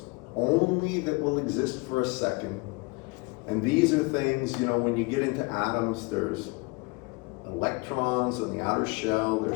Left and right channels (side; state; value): right; quieter; 28.1 dB